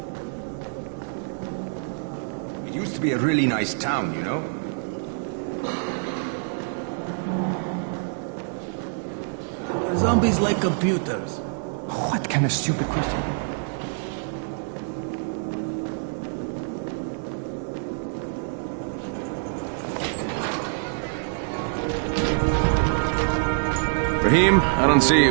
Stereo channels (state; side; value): silent; left; digital silence